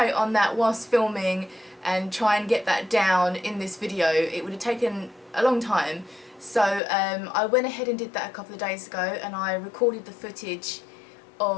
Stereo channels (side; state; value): right; drops out; at 6.8 s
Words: on that whilst filming and try and get that down in this video. It would have taken a long time. So I went ahead and did that a couple of days ago, and I recorded the footage